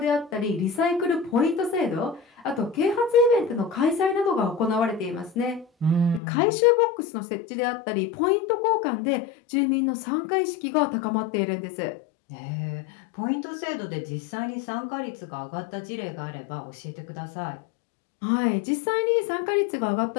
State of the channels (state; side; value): drops out; right; at 6.2 s